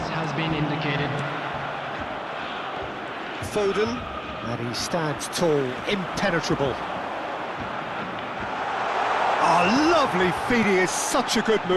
has been indicated. Foden. And he stands tall, impenetrable. Oh, lovely feed, he is such a good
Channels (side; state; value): both; identical; correlation 1.00